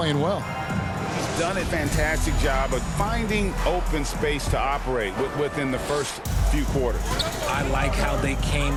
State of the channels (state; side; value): identical; both; correlation 1.00